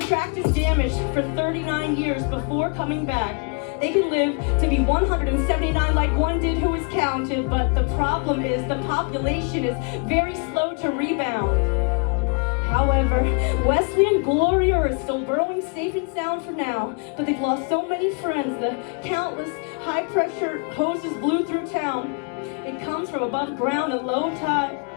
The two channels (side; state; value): right; quieter; 36.3 dB